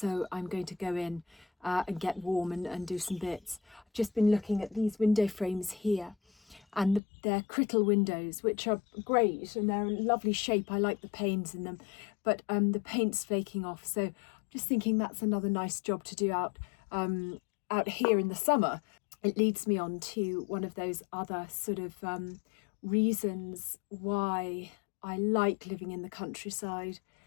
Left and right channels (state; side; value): drops out; right; at 7.0 s